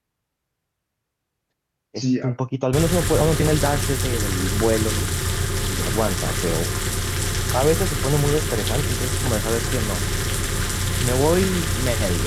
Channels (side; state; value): both; identical; correlation 1.00